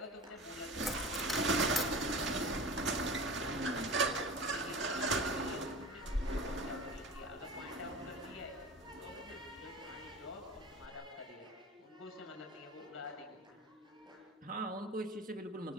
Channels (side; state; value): both; normal; correlation 0.35